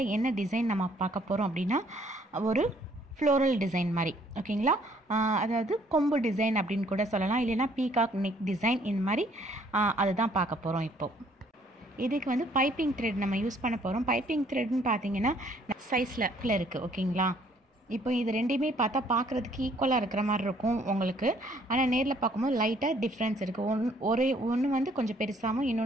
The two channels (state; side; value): normal; both; correlation 0.63